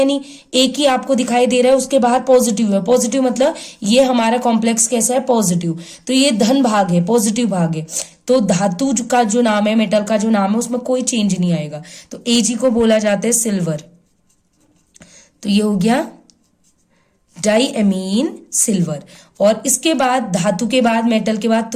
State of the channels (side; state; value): both; identical; correlation 1.00